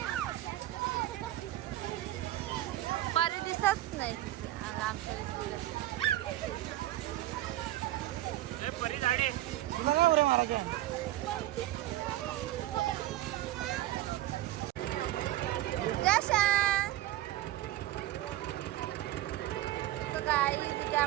परी दिसत नाही आमच्या काय तिथे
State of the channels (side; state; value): left; quieter; 15.3 dB